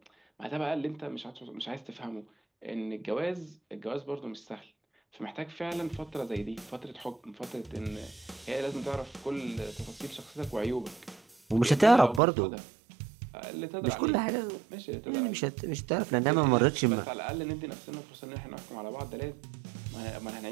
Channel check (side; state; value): left; drops out; at 12.2 s